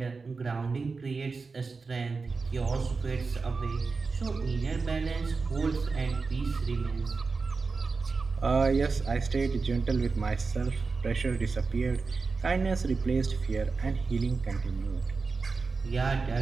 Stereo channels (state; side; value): quieter; left; 4.4 dB